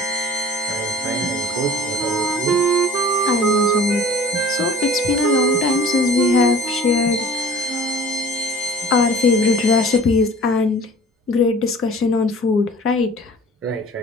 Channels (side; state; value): both; normal; correlation 0.45